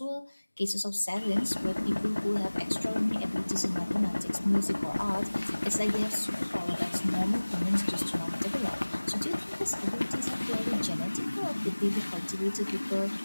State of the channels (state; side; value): inverted; both; correlation -1.00